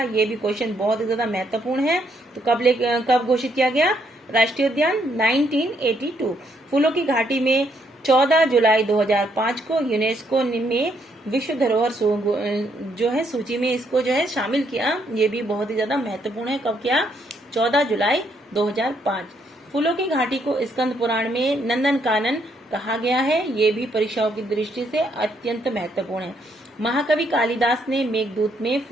ये भी क्वेश्चन बहुत ही ज्यादा महत्वपूर्ण है। तो कब घोषित किया गया राष्ट्रीय उद्यान? 1982। फूलों की घाटी में 14 जुलाई 2005 को यूनेस्को में विश्व धरोहर जो है सूची में इसको जो है शामिल किया। ये भी बहुत ही ज्यादा महत्वपूर्ण है। कब किया? 14 जुलाई 2005। फूलों की घाटी को स्कंद पुराण में नंदन कानन कहा गया है। ये भी परीक्षाओं की दृष्टि से अत्यंत महत्वपूर्ण है। महाकवि कालिदास ने मेघदूत में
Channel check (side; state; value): both; normal; correlation 0.73